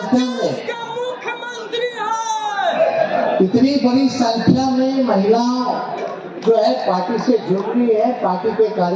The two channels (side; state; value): both; identical; correlation 1.00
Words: इतनी बड़ी संख्या में महिलाओं जो है पार्टी से जुड़ रही है, पार्टी के